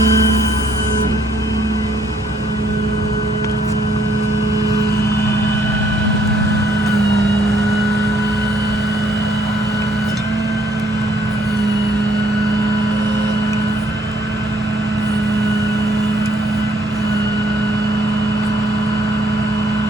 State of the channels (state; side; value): normal; both; correlation 0.66